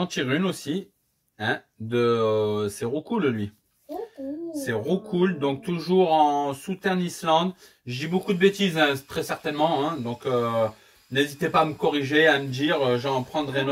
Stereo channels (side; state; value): both; identical; correlation 1.00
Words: tires une aussi. Hein, c'est Roucool lui. C'est Roucool, donc toujours en Southern Island. Je dis beaucoup de bêtises, hein, très certainement. Hein, donc n'hésitez pas à me corriger, à me dire, j'en prendrai